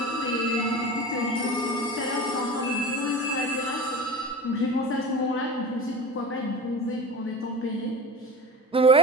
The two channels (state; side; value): normal; both; correlation 0.33